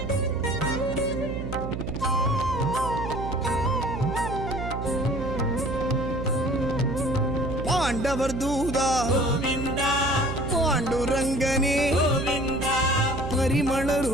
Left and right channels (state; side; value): noise; right; hum, 5 dB below the sound